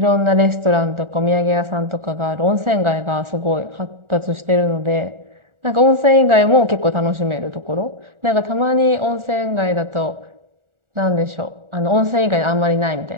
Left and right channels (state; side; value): late; left; 1.4 ms